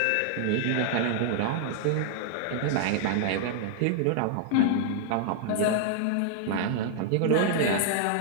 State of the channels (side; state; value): both; different; correlation 0.00